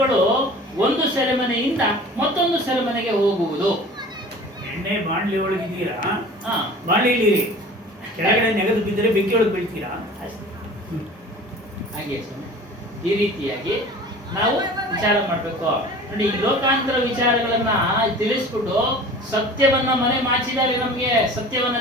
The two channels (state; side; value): normal; both; correlation 0.42